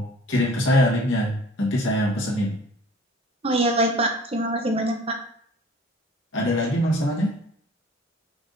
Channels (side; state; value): both; normal; correlation 0.49